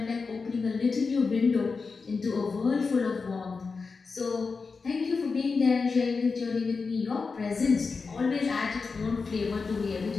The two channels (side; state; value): right; quieter; 4.7 dB